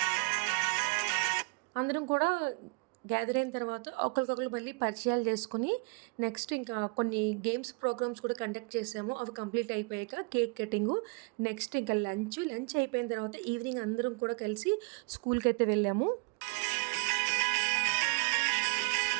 అందరం కూడా గ్యాదర్ అయిన తర్వాత ఒకరికొకరు మళ్ళీ పరిచయాలు చేసుకుని నెక్స్ట్ ఇంకా కొన్ని గేమ్స్ ప్రోగ్రామ్స్ కూడా కండక్ట్ చేసాము. అవి కంప్లీట్ అయిపోయాక కేక్ కటింగు, నెక్స్ట్ ఇంకా లంచ్ అయిపోయిన తర్వాత ఈవినింగ్ అందరం కూడా కలిసి స్కూల్కి అయితే వెళ్ళాము.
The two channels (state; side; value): quieter; left; 31.4 dB